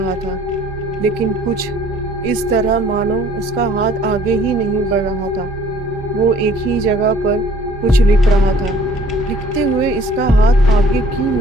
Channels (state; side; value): normal; both; correlation 0.56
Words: था, लेकिन कुछ इस तरह मानो उसका हाथ आगे ही नहीं बढ़ रहा था। वो एक ही जगह पर कुछ लिख रहा था। लिखते हुए इसका हाथ आगे क्यों